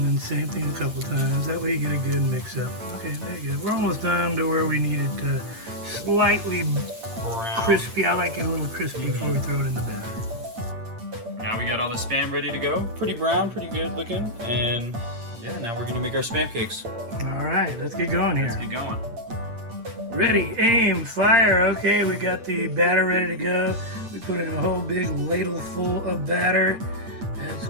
then same thing a couple times. That way you get a good mix up. Okay, there you go. We're almost done to where we need it slightly Brown. crispy. I like it a little crispy before we throw it in the batter. Now we got all the Spam ready to go. Pretty brown, pretty good looking. And yeah, now we're gonna make our Spam cakes. All right, let's get going here. Let's get going. Ready, aim, fire. Okay, we got the batter ready to go. We put in a whole big ladle full of batter. That's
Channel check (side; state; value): left; late; 8.7 ms